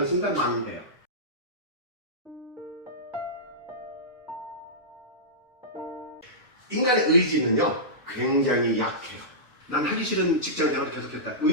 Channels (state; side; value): normal; both; correlation -0.16